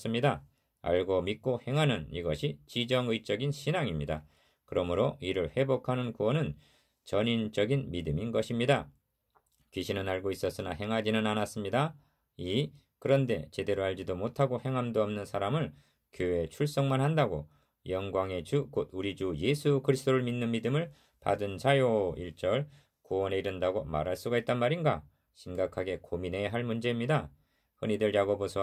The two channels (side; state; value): both; identical; correlation 1.00